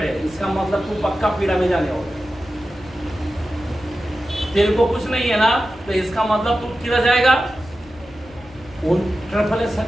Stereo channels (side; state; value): left; noise; rumble, 23 dB below the sound